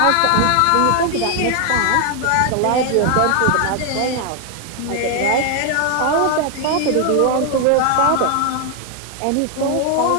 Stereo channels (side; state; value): both; different; correlation 0.00